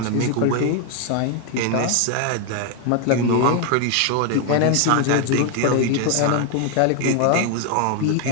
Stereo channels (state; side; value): different; both; correlation 0.01